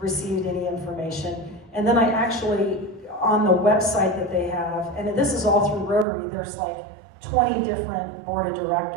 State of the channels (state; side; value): drops out; left; at 6.1 s